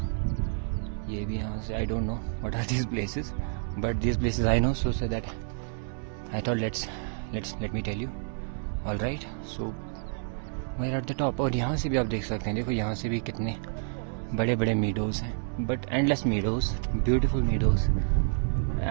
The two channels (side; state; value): left; silent; 59 dB below the other